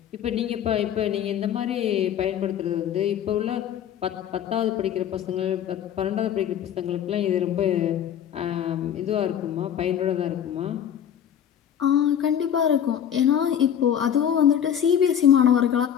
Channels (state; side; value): quieter; right; 9.4 dB